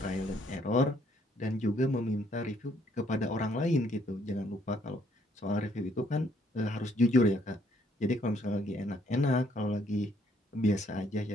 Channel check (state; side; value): normal; both; correlation 0.67